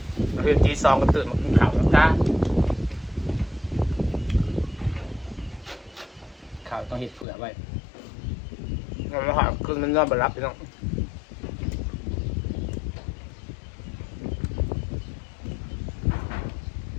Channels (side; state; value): right; drops out; at 7.2 s